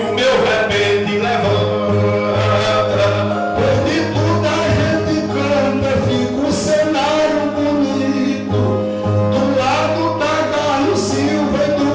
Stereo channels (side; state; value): both; identical; correlation 1.00